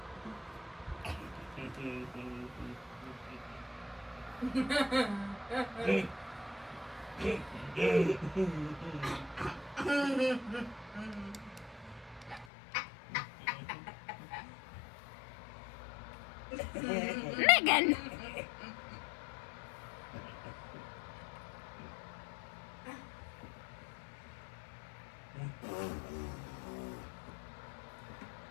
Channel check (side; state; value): right; drops out; at 12.5 s